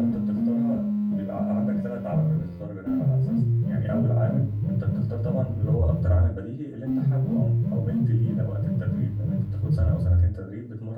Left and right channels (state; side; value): identical; both; correlation 1.00